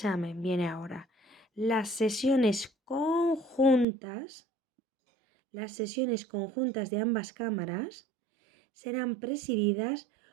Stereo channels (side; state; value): left; drops out; at 3.9 s